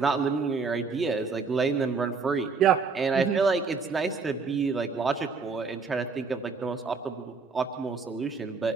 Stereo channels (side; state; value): left; quieter; 4.8 dB